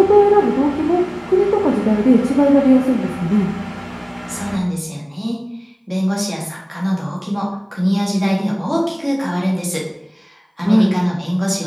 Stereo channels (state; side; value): identical; both; correlation 1.00